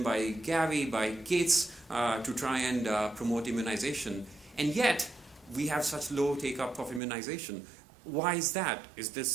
by Gavi, by Gates, to try and promote immunization. And yet, we have such low take-up of immunization. Why is that?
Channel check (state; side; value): drops out; left; at 7.0 s